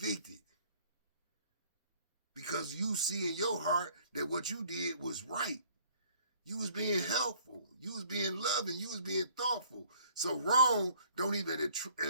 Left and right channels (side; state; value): both; inverted; correlation -0.57